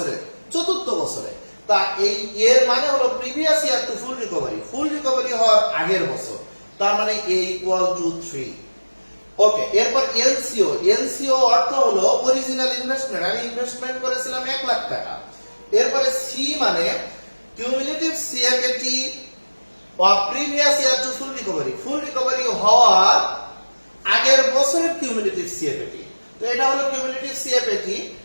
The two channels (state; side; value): inverted; both; correlation -1.00